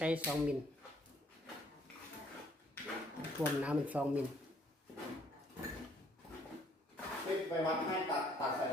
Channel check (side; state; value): both; normal; correlation 0.64